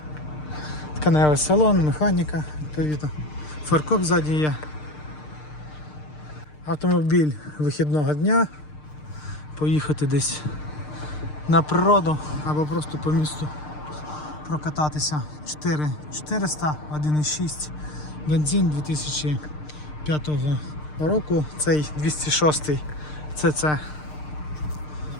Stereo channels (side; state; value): right; late; 6.6 ms